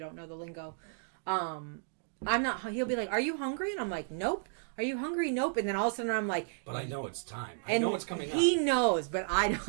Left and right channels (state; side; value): silent; left; digital silence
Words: know the lingo, I'm not. He'll be like, "Are you hungry?" And I'm like, "Nope." Are you hungry? Nope. And then all of a sudden I'm like... But I know it's time. I know it's coming up. He knows, but